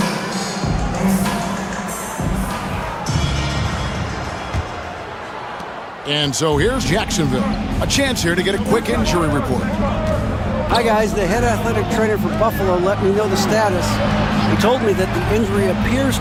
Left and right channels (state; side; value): identical; both; correlation 1.00